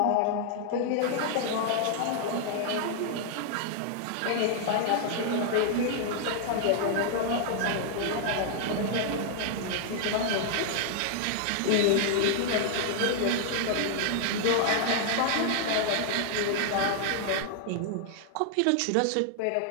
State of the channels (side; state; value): both; different; correlation 0.00